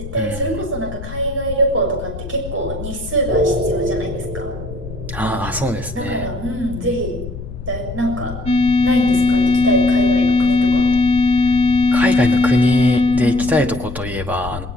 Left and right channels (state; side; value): noise; left; rumble, 11 dB below the sound